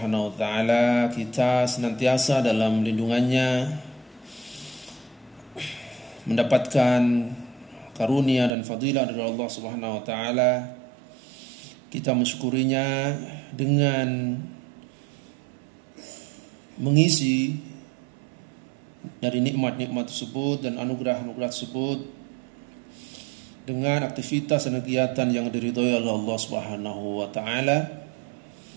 wa taala, kita senantiasa dalam lindungannya, mendapatkan karunia dan fadilah dari Allah Subhanahu wa taala. Kita mensyukurinya dengan mengisi dari nikmat-nikmat tersebut dan anugerah-anugerah tersebut dengan aktivitas dan kegiatan yang diridhoi oleh Allah Subhanahu wa taala.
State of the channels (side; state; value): left; drops out; at 8.6 s